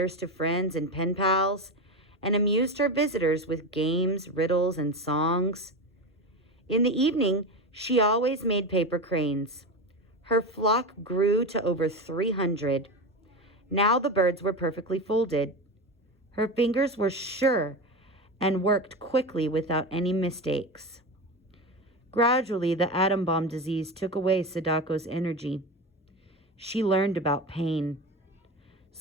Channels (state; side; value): normal; both; correlation 0.21